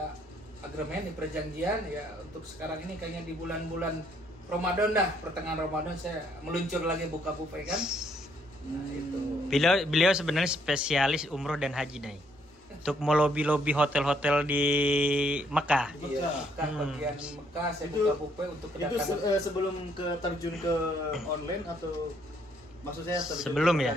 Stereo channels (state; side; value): normal; both; correlation 0.68